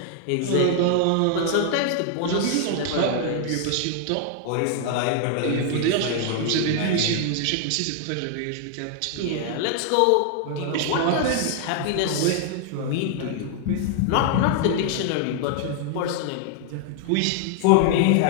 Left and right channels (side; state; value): both; different; correlation 0.00